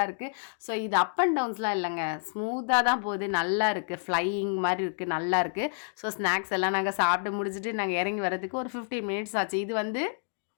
இருக்குது. ஸோ இது அப் அண்ட் டவுன்ஸ்லாம் இல்லைங்க, ஸ்மூத்தாக தான் போகுது, நல்லா இருக்குது, ஃப்ளையிங் மாதிரி இருக்குது, நல்லா இருக்குது. ஸோ ஸ்நாக்ஸ் எல்லாம் நாங்கள் சாப்பிட்டு முடிச்சுட்டு நாங்கள் இறங்கி வரதுக்கு ஒரு 15 மினிட்ஸ் ஆச்சு. இது வந்து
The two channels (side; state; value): right; silent; digital silence